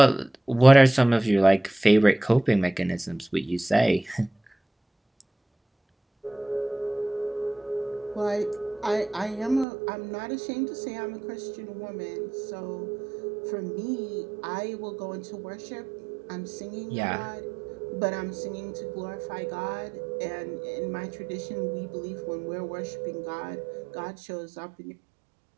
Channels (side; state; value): left; drops out; at 9.7 s